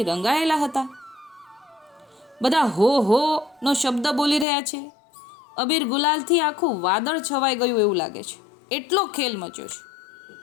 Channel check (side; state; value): right; drops out; at 4.5 s